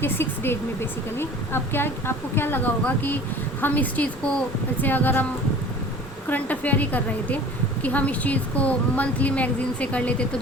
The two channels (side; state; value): both; normal; correlation 0.44